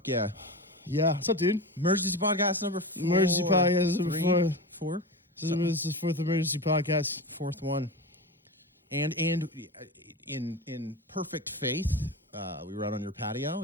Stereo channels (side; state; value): both; normal; correlation 0.24